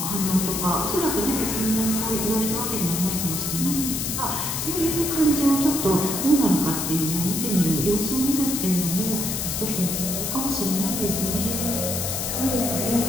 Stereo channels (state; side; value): noise; left; hiss, 2 dB below the sound